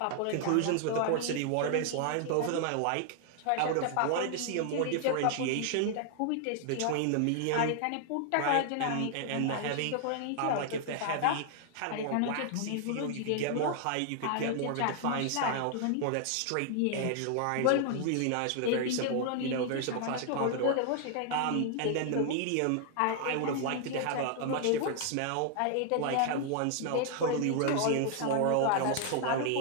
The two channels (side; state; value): both; different; correlation 0.00